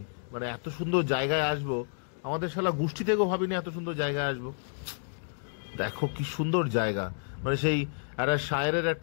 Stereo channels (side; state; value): right; silent; digital silence